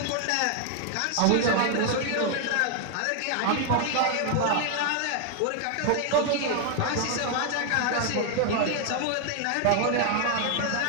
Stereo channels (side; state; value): both; different; correlation 0.00